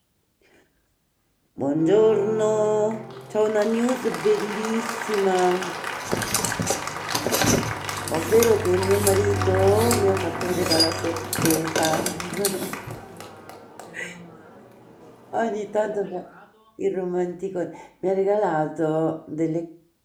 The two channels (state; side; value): identical; both; correlation 1.00